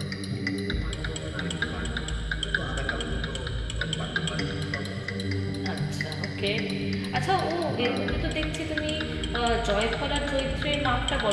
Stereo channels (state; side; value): identical; both; correlation 1.00